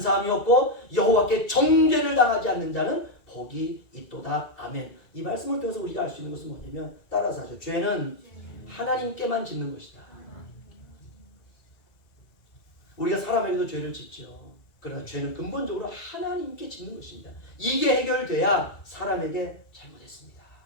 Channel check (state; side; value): late; right; 2.3 ms